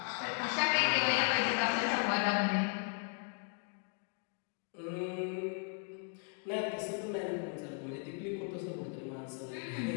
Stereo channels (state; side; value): quieter; right; 38.7 dB